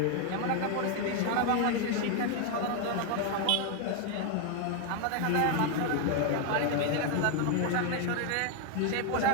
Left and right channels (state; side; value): different; both; correlation 0.01